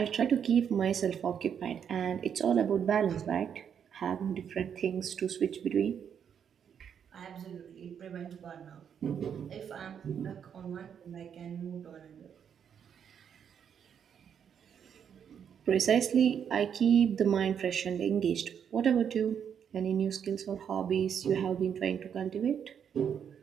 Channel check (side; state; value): left; quieter; 8.0 dB